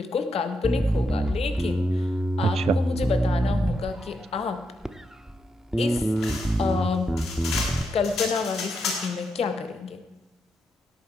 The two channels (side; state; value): both; normal; correlation 0.82